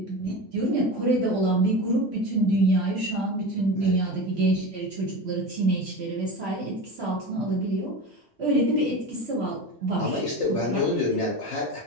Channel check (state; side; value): normal; both; correlation 0.27